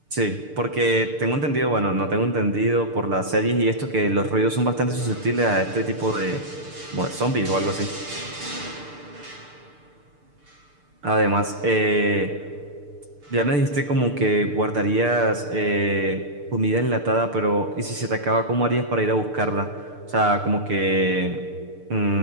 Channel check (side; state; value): left; late; 6.7 ms